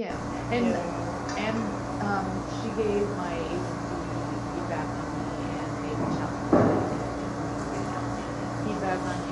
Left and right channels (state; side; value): identical; both; correlation 1.00